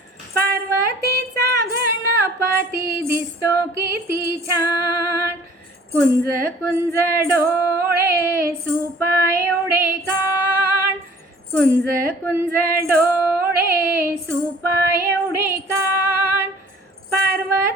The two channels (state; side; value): normal; both; correlation 0.52